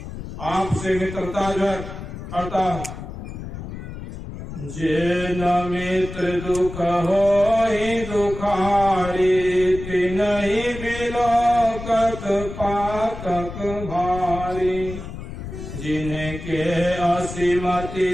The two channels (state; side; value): noise; left; rumble, 10 dB below the sound